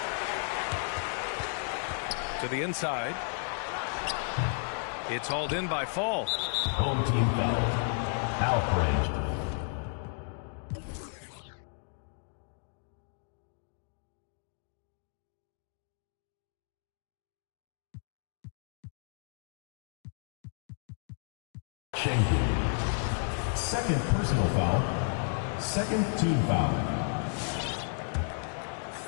To the inside. It's hauled in by Fall. Home team foul. Alpha range. Shengun. Second personal foul. Second team foul.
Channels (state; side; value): silent; right; 56 dB below the other